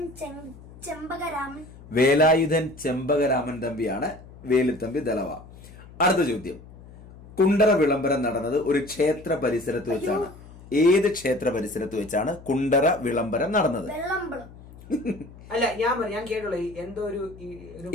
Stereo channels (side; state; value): left; noise; hum, 19 dB below the sound